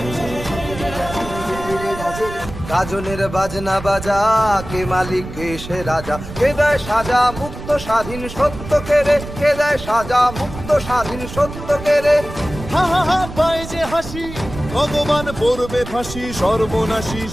গাজনের বাজনা বাজা, কে মালিক কে সে রাজা, কে দেয় সাজা মুক্ত স্বাধীন সত্য কেড়ে, কে দেয় সাজা মুক্ত স্বাধীন সত্য কেড়ে। হা হা হা পায় যে হাসি, ভগবান পড়বে ফাঁসি, সর্বনাশী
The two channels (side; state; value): right; noise; rumble, 11 dB below the sound